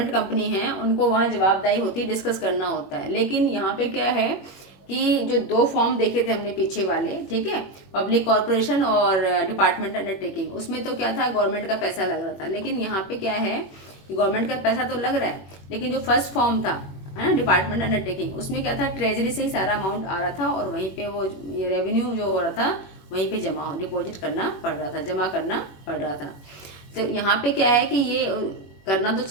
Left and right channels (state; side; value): late; right; 21 ms